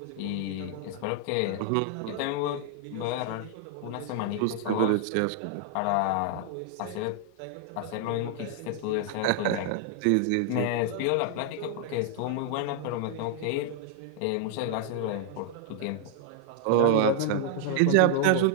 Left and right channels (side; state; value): both; different; correlation 0.00